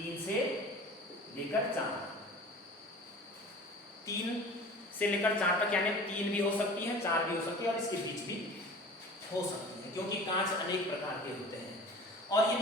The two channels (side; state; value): both; normal; correlation 0.41